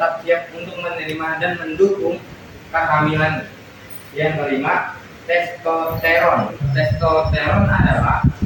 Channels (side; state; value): both; identical; correlation 1.00